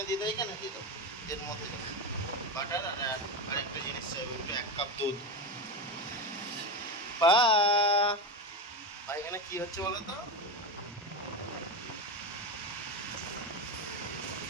দিয়ে দাও, এখানে দিয়ে দাও। এর মধ্যে বাটার আর আরেকটা জিনিস চাইবে, একটু 1 কাপ দুধ। পা এখানে কি হচ্ছে বলো তো?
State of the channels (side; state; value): both; normal; correlation 0.17